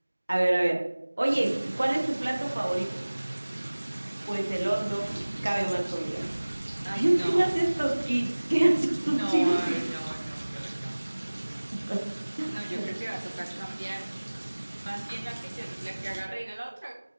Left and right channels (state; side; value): inverted; both; correlation -1.00